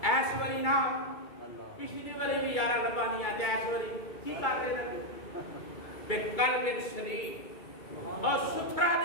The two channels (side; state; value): right; late; 2.3 ms